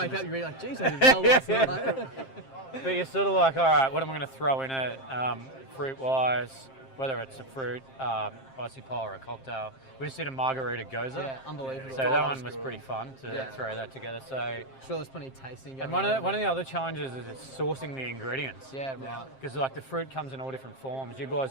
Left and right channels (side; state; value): right; late; 7.5 ms